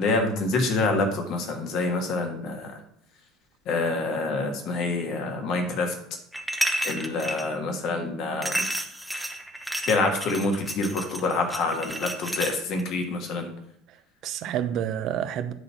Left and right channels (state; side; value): normal; both; correlation 0.51